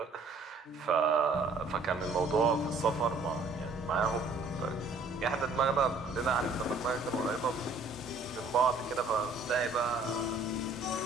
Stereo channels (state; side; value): quieter; left; 3.5 dB